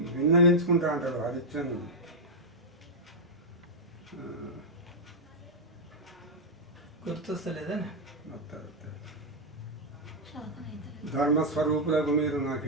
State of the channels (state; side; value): normal; both; correlation -0.03